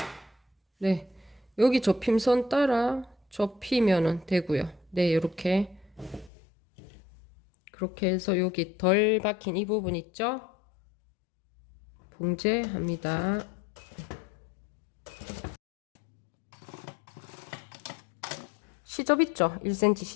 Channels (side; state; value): right; drops out; at 6.3 s